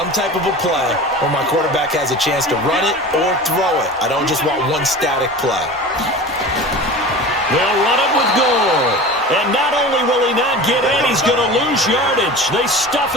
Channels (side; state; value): both; normal; correlation 0.35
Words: type of a play where my quarterback has a chance to run it or throw it. I don't just want one static play. They'll run it with Gore. And not only will he not get in, he's going to lose yardage. They